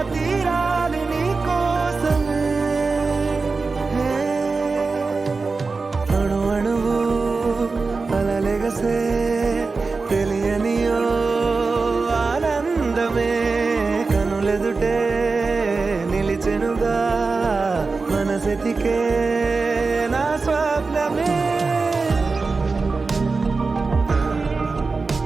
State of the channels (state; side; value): quieter; left; 4.1 dB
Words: తీరాలు నీ కోసమే అణు అణువు అలలెగసే తెలియనియో ఆనందమే కనులెదుటే నిలిచెనుగా మనసెతికే నా స్వప్నమే